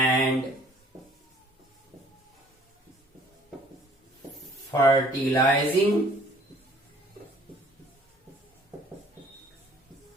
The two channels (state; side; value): normal; both; correlation 0.56